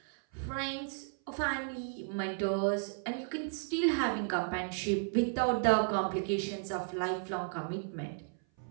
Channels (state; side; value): silent; left; 55 dB below the other